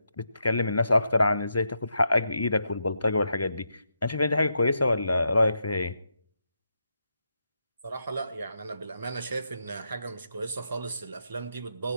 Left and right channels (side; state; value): both; inverted; correlation -0.83